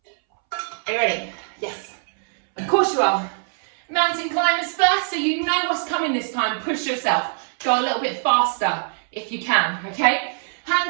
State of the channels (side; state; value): left; silent; 64 dB below the other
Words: Are you ready? Yes. Of course you are. Mountain climbers first, so you know what's coming this time. Push yourself. Go a little bit faster if you can, okay?